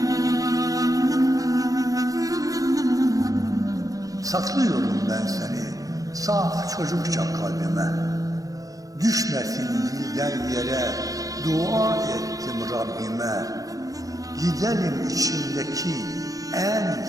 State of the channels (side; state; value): left; late; 0.17 ms